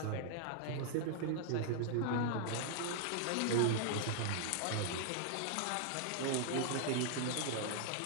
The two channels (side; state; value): both; different; correlation 0.00